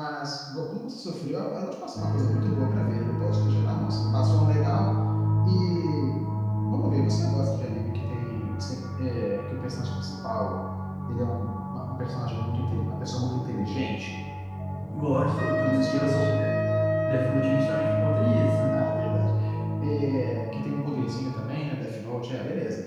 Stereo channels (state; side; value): identical; both; correlation 1.00